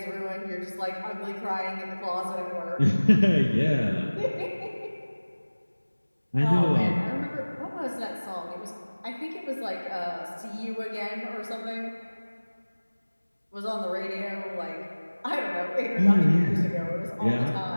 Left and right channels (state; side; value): inverted; both; correlation -1.00